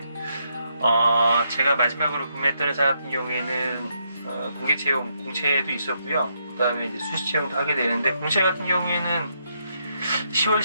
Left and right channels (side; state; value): both; inverted; correlation -0.78